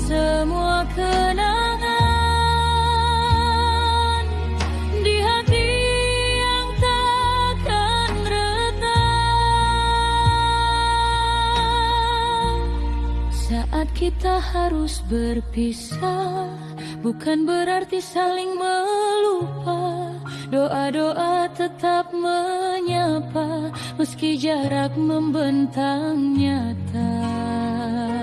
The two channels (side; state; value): both; identical; correlation 1.00